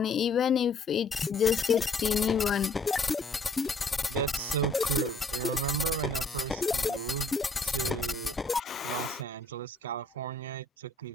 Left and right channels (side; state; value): right; quieter; 3.0 dB